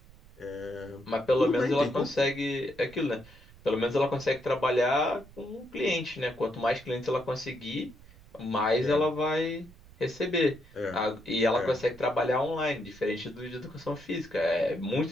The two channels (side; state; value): right; noise; rumble, 22 dB below the sound